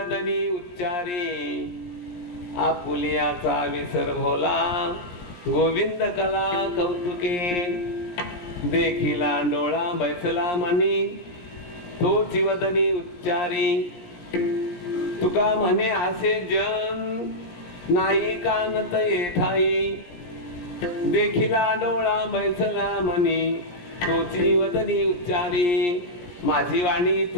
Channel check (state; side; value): late; right; 17 ms